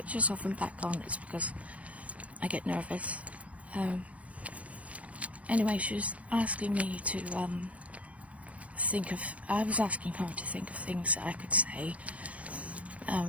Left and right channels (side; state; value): left; late; 0.065 ms